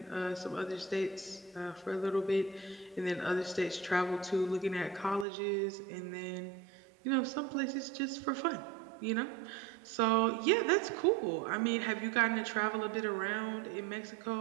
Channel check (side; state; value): left; drops out; at 5.2 s